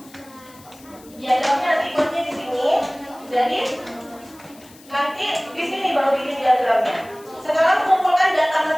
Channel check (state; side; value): noise; left; hiss, 24 dB below the sound